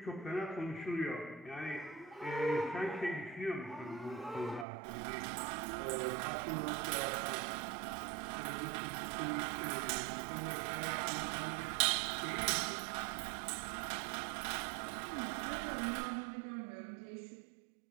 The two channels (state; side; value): drops out; left; at 4.7 s